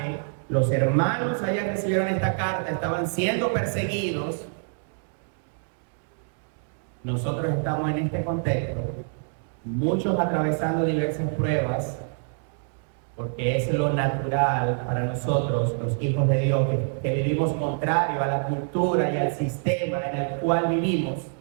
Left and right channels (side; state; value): left; silent; 61 dB below the other